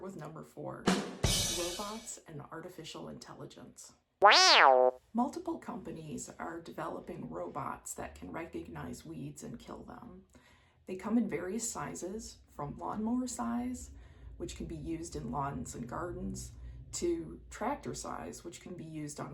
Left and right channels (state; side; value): identical; both; correlation 1.00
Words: number 4, robots and artificial intelligence. Multiple companies are developing robots that can recognize weeds and kill them. They come in various sizes, from lawnmower size, which can be used in lawns and gardens, to tractor size, which can be used on